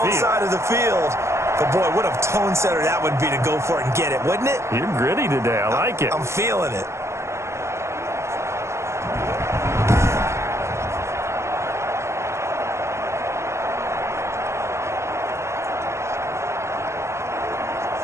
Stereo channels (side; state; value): left; late; 0.13 ms